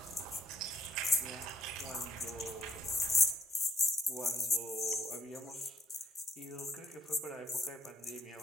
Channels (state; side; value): normal; both; correlation 0.68